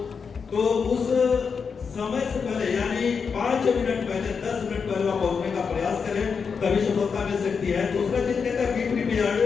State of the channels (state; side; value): quieter; right; 5.8 dB